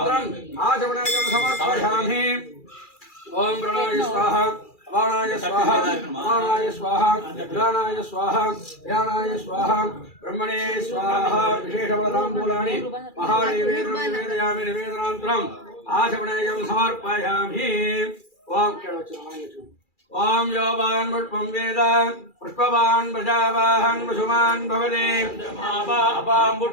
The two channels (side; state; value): right; late; 2.4 ms